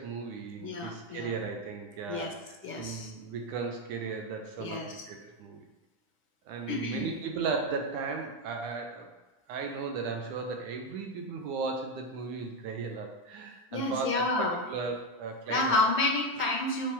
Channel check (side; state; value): left; late; 9.9 ms